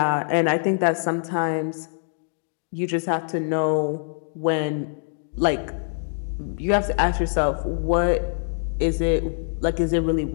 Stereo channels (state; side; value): silent; right; digital silence